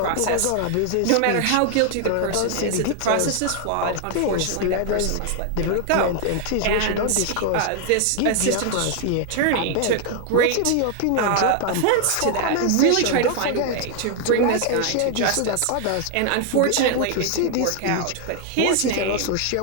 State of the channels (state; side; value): different; both; correlation 0.00